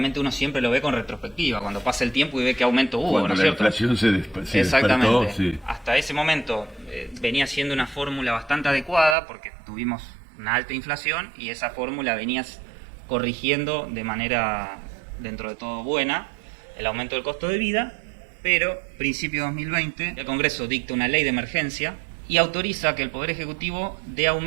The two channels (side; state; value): left; drops out; at 9.2 s